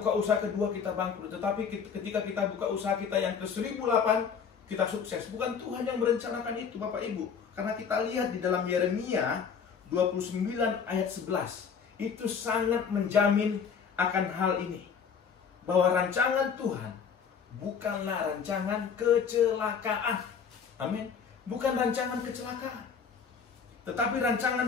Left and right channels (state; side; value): quieter; right; 6.5 dB